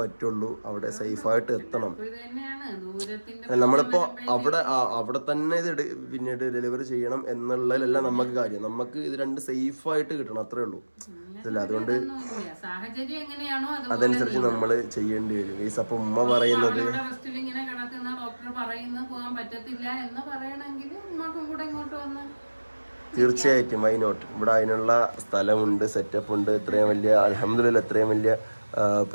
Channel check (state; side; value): inverted; both; correlation -1.00